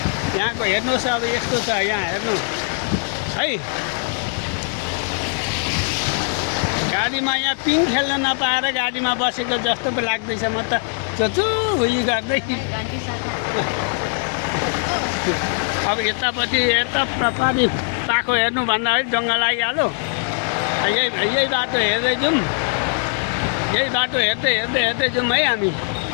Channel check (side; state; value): right; silent; 58 dB below the other